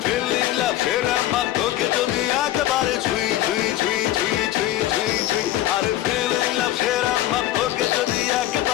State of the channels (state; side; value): quieter; right; 14.1 dB